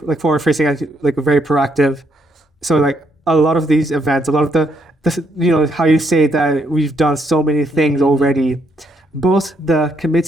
like very proactive. So like a lot of these events, a lot of the how you say that we've done so many things already. Both the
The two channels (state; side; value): normal; both; correlation 0.74